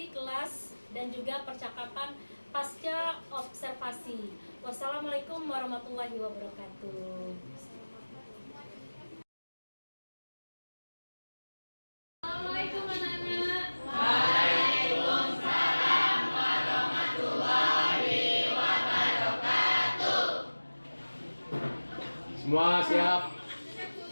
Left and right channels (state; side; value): inverted; both; correlation -1.00